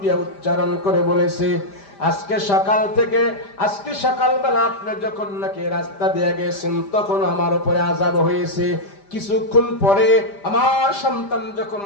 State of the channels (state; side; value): late; right; 5.0 ms